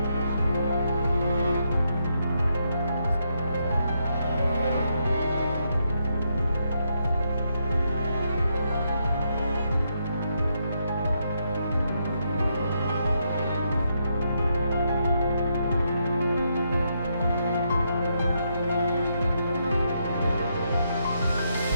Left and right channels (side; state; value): both; inverted; correlation -0.79